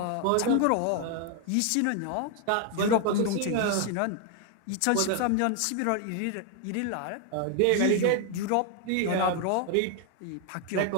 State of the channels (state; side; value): different; both; correlation 0.00